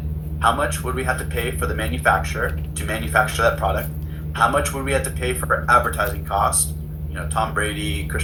how much would we have to pay for the manufacturer to manufacture that product, how much would we have to pay for advertising costs, Tom Brady,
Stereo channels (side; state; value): both; identical; correlation 1.00